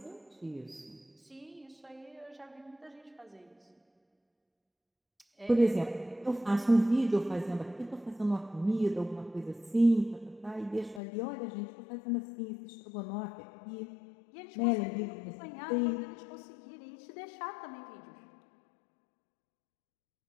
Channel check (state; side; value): drops out; right; at 11.0 s